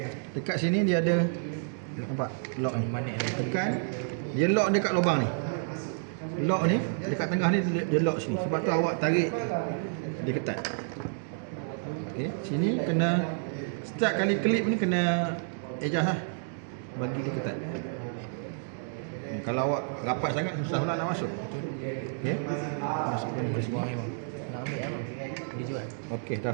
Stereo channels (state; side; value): silent; left; digital silence